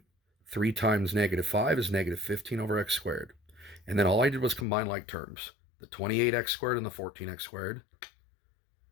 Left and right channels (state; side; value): drops out; right; at 4.7 s